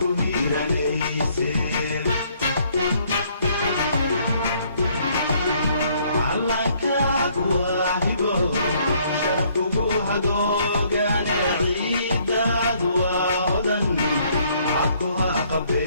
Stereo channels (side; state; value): both; inverted; correlation -0.65